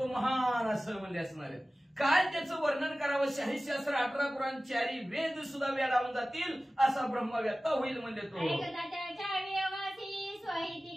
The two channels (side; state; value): both; normal; correlation 0.97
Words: महान असं म्हणले असणारे. काय त्याचं वर्णन करावं, शाहीशास्त्र 18 पुराण 4 वेद सुद्धा वेडावून जातील असा ब्रह्मव्यक्ता होईल म्हणजे तो. ऐकता त्याच्या वियोगासी, स्वहिती